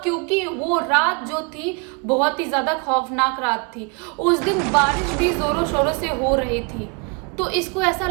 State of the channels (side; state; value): left; quieter; 32.9 dB